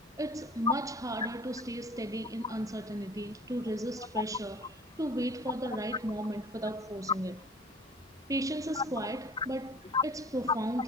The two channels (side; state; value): both; normal; correlation 0.47